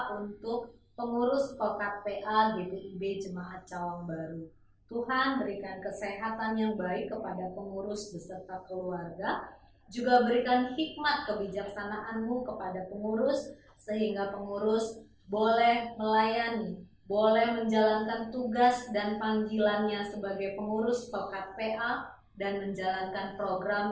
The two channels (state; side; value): identical; both; correlation 1.00